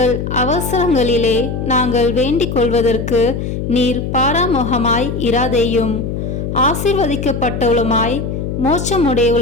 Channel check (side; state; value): left; noise; hum, 4 dB below the sound